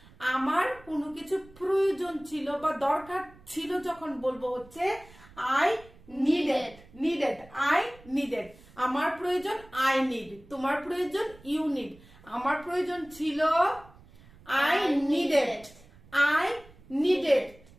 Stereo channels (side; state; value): right; noise; rumble, 24 dB below the sound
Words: আমার কোনো কিছু প্রয়োজন ছিল বা দরকার ছিল যখন বলবো হচ্ছে I needed. Needed, I needed. আমার প্রয়োজন I need, তোমার প্রয়োজন you need। আমার প্রয়োজন ছিল I needed, I needed।